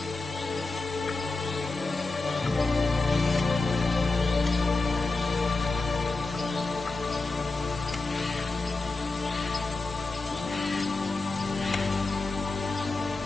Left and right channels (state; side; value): quieter; right; 3.6 dB